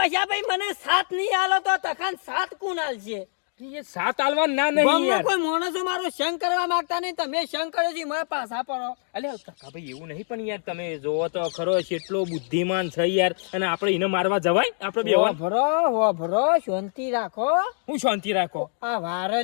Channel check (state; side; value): silent; right; digital silence